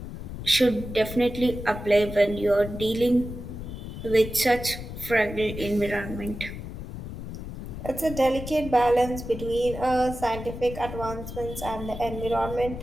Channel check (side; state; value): left; noise; rumble, 9 dB below the sound